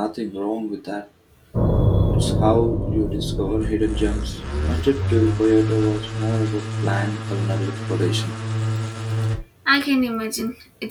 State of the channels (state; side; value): identical; both; correlation 1.00